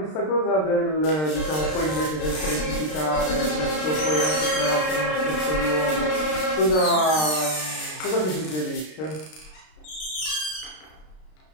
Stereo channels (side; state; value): right; late; 33 ms